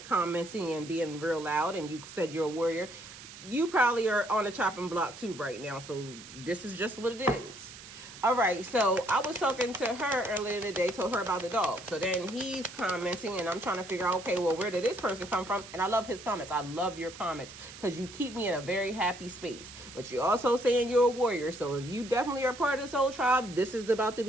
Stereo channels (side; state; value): right; noise; hiss, 15 dB below the sound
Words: commenting and being real loud and you said you're a warrior, you probably are on the chopping block too right now. So, this is just what it is. All right, so I was talking to her earlier in the day, told her about the dog. So then he's commenting, and I'm trying to figure out, okay, well, where did this person come from? And I love his comments. I love your comments because you keep me in a very happy space. But you're also saying you're a warrior. So if you definitely are part of this whole tribe, this is about to